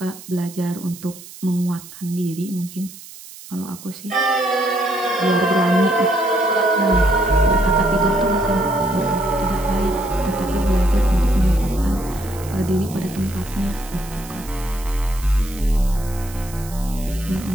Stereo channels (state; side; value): noise; right; hiss, 17 dB below the sound